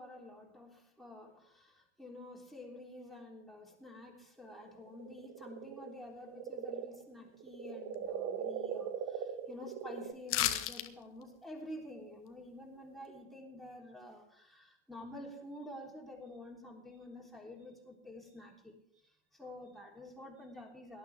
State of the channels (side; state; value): both; normal; correlation 0.13